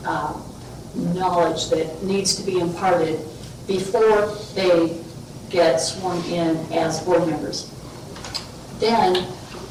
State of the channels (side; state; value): both; identical; correlation 1.00